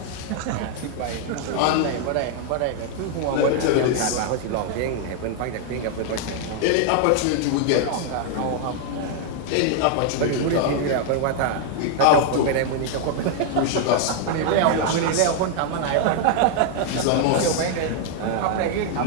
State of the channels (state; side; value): different; both; correlation 0.00